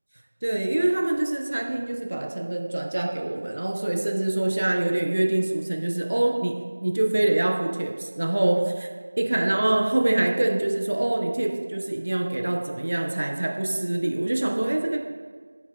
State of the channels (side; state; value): both; inverted; correlation -1.00